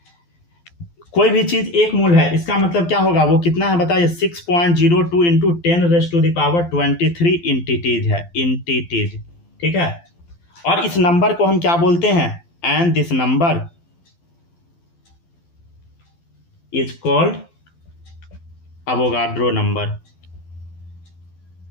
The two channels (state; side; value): late; right; 12 ms